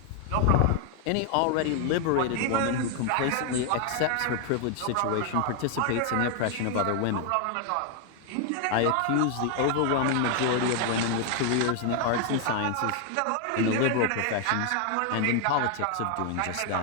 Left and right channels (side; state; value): both; different; correlation 0.00